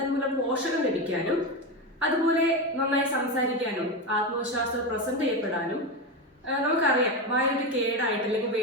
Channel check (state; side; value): normal; both; correlation 0.16